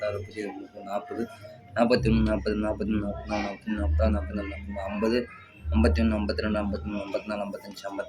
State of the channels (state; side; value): identical; both; correlation 1.00